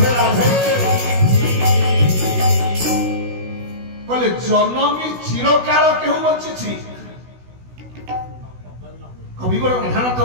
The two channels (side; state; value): left; late; 16 ms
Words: जनमी चिरकाल केहू बची कविवर राधानाथ